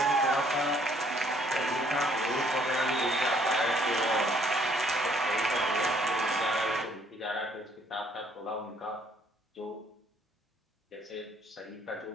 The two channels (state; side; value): normal; both; correlation 0.63